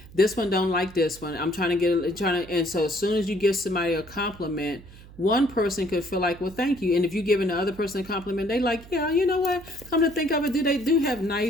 this one don't like this one. And so as soon as you give somebody a compliment, one person could feel like, well, thank you. And if you're giving the other person a compliment, they like, yeah, you know what? Come to think of it, they do have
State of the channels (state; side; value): noise; right; hum, 19 dB below the sound